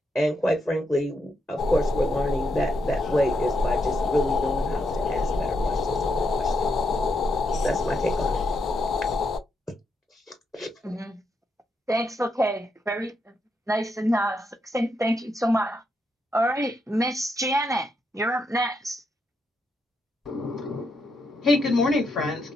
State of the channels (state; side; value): normal; both; correlation 0.81